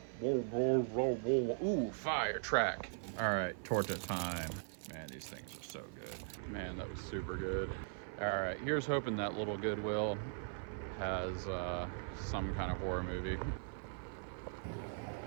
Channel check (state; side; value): silent; left; 51 dB below the other